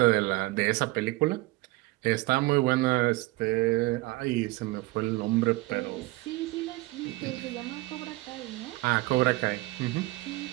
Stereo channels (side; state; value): left; quieter; 21.1 dB